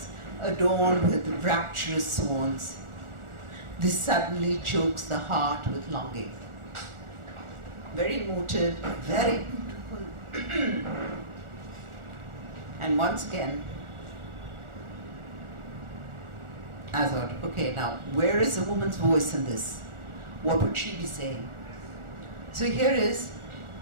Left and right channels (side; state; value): left; late; 1.4 ms